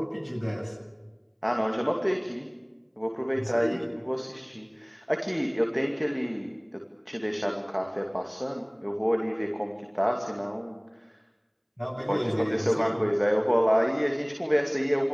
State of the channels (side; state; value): both; identical; correlation 1.00